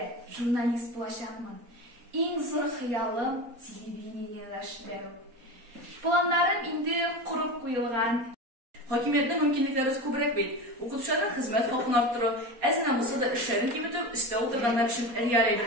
журналист булачакмын. Иң зур хыялым телевидениедә эшләү. Планнарым инде курып куелган. Хакимиятның мөмкинлекләре күбрәк бит. Укытучыларның хезмәт хакын арттыру, әзенә булса да эшләрен киметү өстә утырганнар өчен реаль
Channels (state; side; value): late; left; 4.2 ms